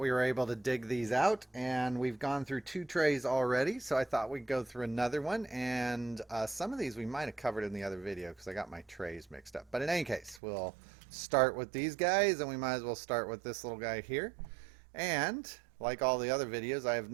were able to dig these out, and we've gone through 2 trays already, so I thought we'd go through another one. And some of these we might have covered in the other video because I got my trays mixed up. But in any case, we'll start with these guys, and we might as well start with this little guy here. And like all the other videos, I have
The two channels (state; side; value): drops out; left; at 10.4 s